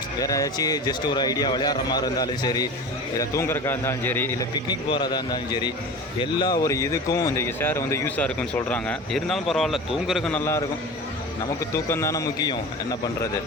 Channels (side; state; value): both; normal; correlation 0.33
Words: வேறு ஏதாச்சும் ஜஸ்ட் ஒரு ஐடியா விளையாடுற மாதிரி இருந்தாலும் சரி, இல்லை தூங்குறக்கா இருந்தாலும் சரி, இல்லை பிக்னிக் போகிறதா இருந்தாலும் சரி, எல்லா ஒரு இதுக்கும் இந்த சேர் வந்து யூஸாக இருக்குன்னு சொல்கிறாங்க. இருந்தாலும் பரவாயில்ல, தூங்குறதுக்கு நல்லாயிருக்கும். நமக்கு தூக்கம் தானே முக்கியம், என்ன பண்ணுறது.